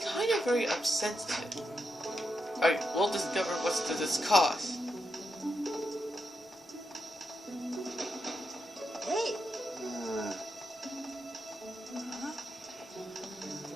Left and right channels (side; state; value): both; normal; correlation 0.84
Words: kind of very sensitive. Alright, we'll discover what's to this cause. Hey!